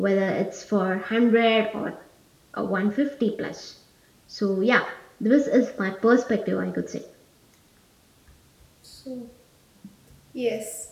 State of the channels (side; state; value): both; identical; correlation 1.00